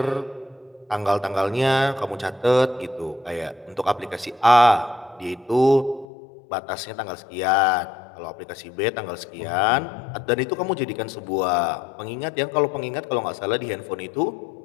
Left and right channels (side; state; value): right; drops out; at 6.1 s